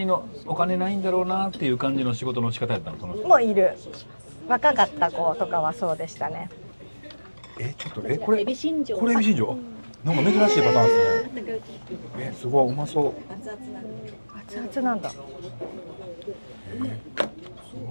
のお金ないんだろうなっていう感じの仕事の仕方やったの？そのもういる若かった子とかはそうでしたね。ちょっとこれエビ新庄、なんか珍しいパターンですね。すごいうまそう。熱々なんだ。す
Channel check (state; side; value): inverted; both; correlation -1.00